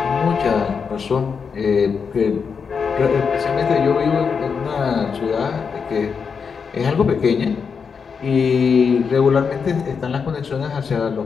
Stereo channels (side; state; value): right; quieter; 5.9 dB